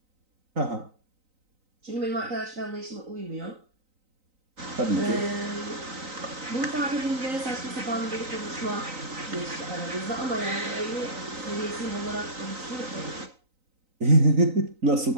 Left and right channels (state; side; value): late; left; 3.9 ms